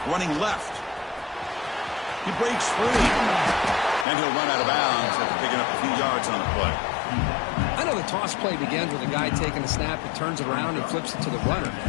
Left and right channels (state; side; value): drops out; right; at 4.0 s